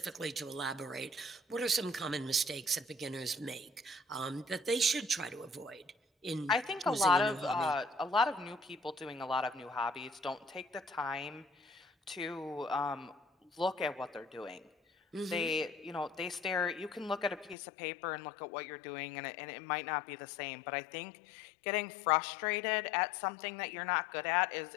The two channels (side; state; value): right; drops out; at 17.6 s